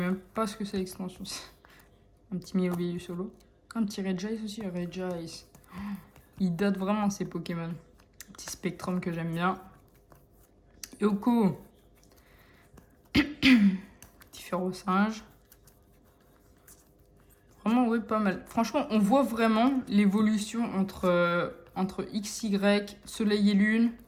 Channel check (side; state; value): both; identical; correlation 1.00